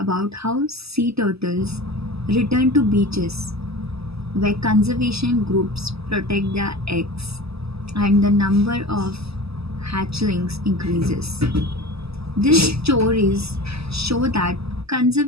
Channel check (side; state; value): left; late; 0.78 ms